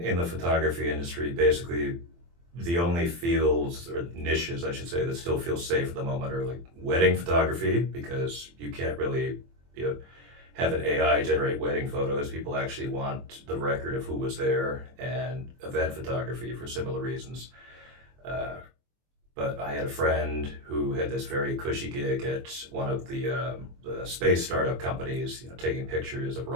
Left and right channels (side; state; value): left; late; 23 ms